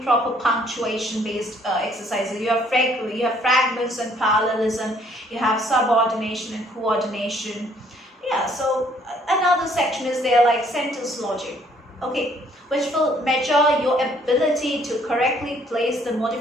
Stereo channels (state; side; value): normal; both; correlation 0.63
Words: punctuation-based exercises, you have fragments and parallelism, you have subordination and coordination. Yeah, so another section is there like sentence logic, okay, which will measure your ability to correctly place the